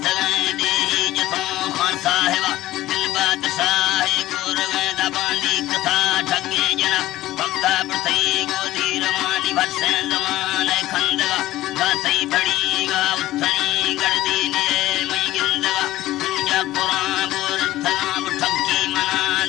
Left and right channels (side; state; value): right; quieter; 15.6 dB